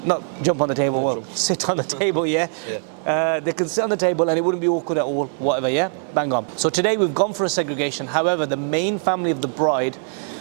not jump on the table, sit on the table, they can sit on the table and it wouldn't be awkward at all, whatever, bang on. So today we've gone for a segregation. However, the main family of the bride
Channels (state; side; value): silent; left; 64 dB below the other